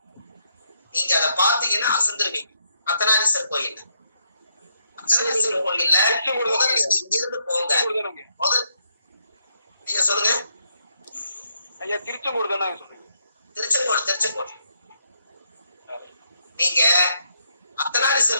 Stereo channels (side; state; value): both; inverted; correlation -0.76